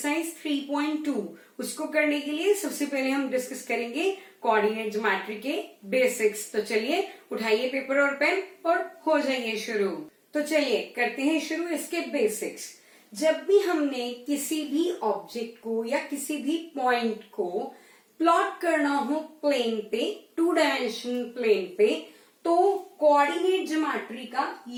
3.2। उसको करने के लिए सबसे पहले हम डिस्कस करेंगे कोऑर्डिनेट ज्योमेट्री के बेसिक्स। तो चलिए उठाइए पेपर और पेन और हो जाइए शुरू। तो चलिए करते हैं शुरू इसके बेसिक्स। जब भी हमने किसी भी ऑब्जेक्ट को या किसी भी पॉइंट को प्लॉट करना हो प्लेन पे, 2 डायमेंशनल प्लेन पे, तो कोऑर्डिनेट ज्योमेट्री का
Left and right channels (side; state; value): both; identical; correlation 1.00